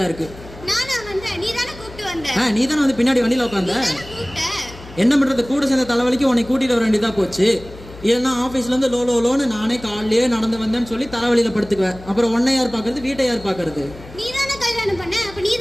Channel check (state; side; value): noise; left; hum, 17 dB below the sound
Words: இருக்கு. நானா வந்தேன், நீ தானே கூப்பிட்டு வந்த. நீ தானே வந்து பின்னாடி வண்டியில உட்காந்த. நீ தானே கூப்பிட்ட. என்ன பண்றது, கூட சேர்ந்த தலைவலிக்கு உன்னை கூட்டிட்டு வர வேண்டியதா போச்சு. இல்லைன்னா ஆஃபீஸ்ல இருந்து லோன்னு நானே காலையிலேயே நடந்து வந்தேன்னு சொல்லி தலைவலியில படுத்துக்குவேன். அப்புறம் உன்னை யார் பாக்குறது, வீட்டை யார் பாக்குறது? நீ தானே கல்யாணம் பண்ண, அப்ப நீ